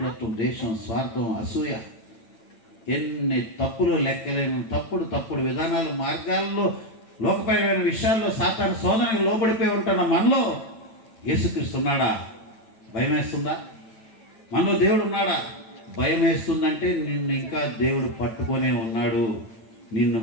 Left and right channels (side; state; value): right; late; 8.9 ms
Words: దేశం, స్వార్థం, అసూయ, ఎన్ని తప్పులు లెక్కలేని తప్పుడు విధానాలు, మార్గాల్లో, లోకపరమైన విషయాల్లో సాతాను శోధనకు లోబడిపోయి ఉంటున్న మనలో యేసుక్రీస్తు ఉన్నాడా? భయం వేస్తుందా? మనలో దేవుడు ఉన్నాడా? భయం వేస్తుందంటే నిన్ను ఇంకా దేవుడు పట్టుకొనే ఉన్నాడు. నిన్ను